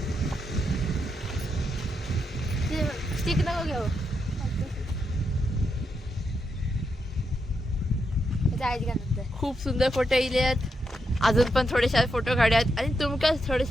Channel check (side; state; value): both; normal; correlation 0.83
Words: स्टिक नको घेऊ. खूप सुंदर फोटो येले आहेत. अजून पण थोडेसे फोटो काढूयात आणि तुमका